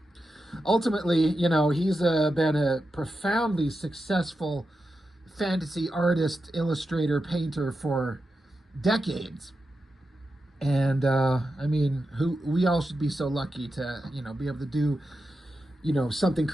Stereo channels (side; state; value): both; normal; correlation 0.89